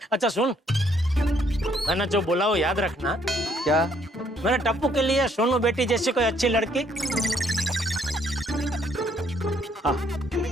अच्छा सुन, मैंने जो बोला वो याद रखना। क्या? मेरे टप्पू के लिए सोनू बेटी जैसी कोई अच्छी लड़की। हाँ।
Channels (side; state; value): both; normal; correlation 0.67